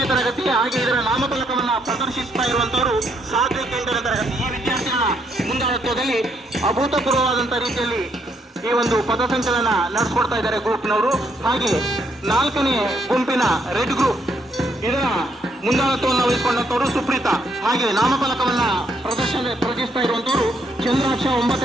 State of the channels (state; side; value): normal; both; correlation 0.73